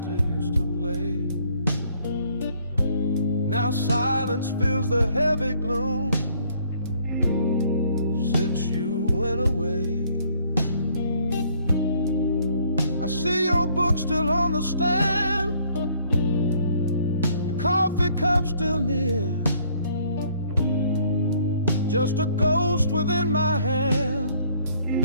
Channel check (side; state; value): both; inverted; correlation -0.63